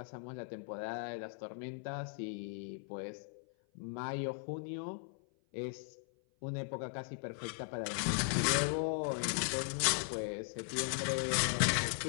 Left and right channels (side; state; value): right; silent; 52 dB below the other